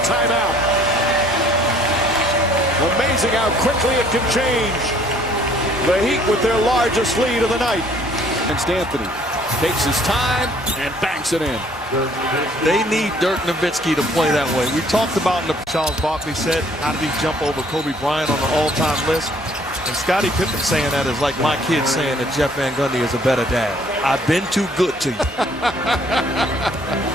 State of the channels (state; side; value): normal; both; correlation 0.60